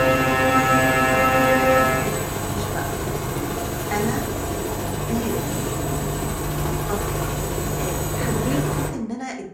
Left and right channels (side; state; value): both; identical; correlation 1.00